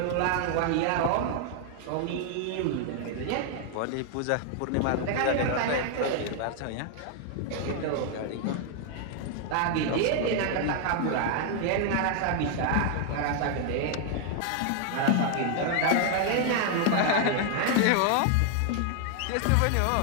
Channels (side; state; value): both; different; correlation 0.00